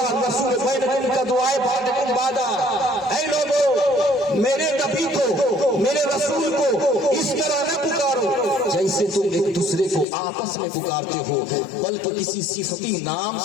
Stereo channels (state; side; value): drops out; right; at 10.1 s